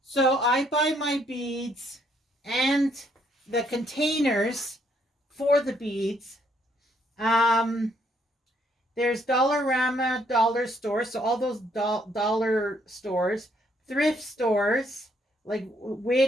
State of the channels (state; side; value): normal; both; correlation 0.70